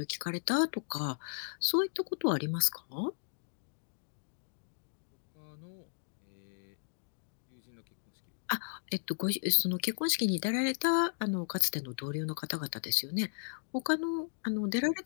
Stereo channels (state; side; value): silent; right; digital silence